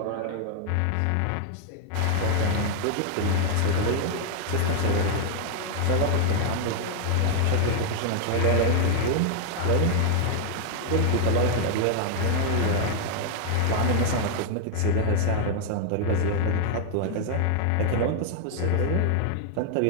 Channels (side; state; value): both; different; correlation 0.00